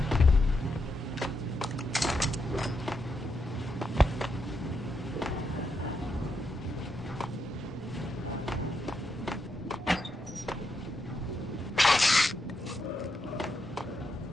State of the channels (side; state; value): both; normal; correlation 0.82